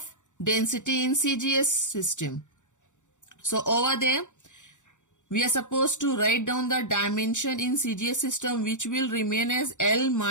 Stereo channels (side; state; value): right; late; 0.85 ms